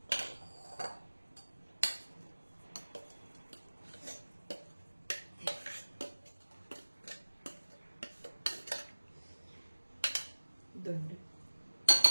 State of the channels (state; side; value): inverted; both; correlation -1.00